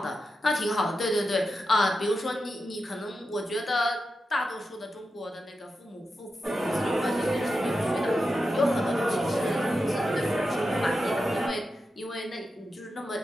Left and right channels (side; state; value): both; normal; correlation 0.89